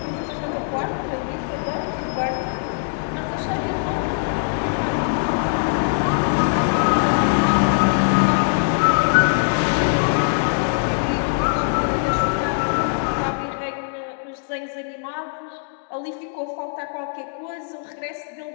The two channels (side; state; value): right; silent; digital silence